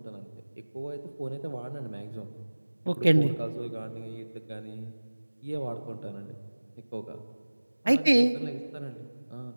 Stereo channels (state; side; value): inverted; both; correlation -1.00